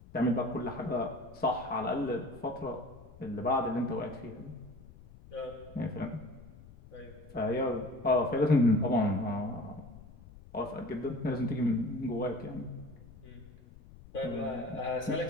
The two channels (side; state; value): left; noise; rumble, 20 dB below the sound